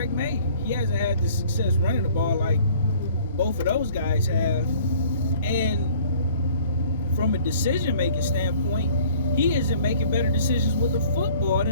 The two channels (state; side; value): inverted; both; correlation -0.53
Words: May. He hasn't had the success running the ball like both of those guys have. And from a decision-making standpoint, he isn't making better decisions with the football